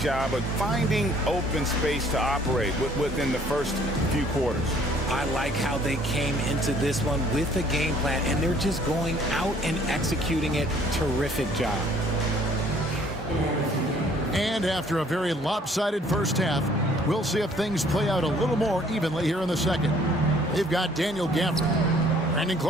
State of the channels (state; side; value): normal; both; correlation 0.59